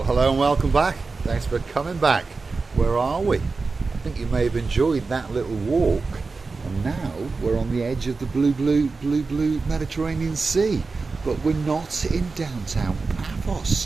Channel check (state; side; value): quieter; left; 4.1 dB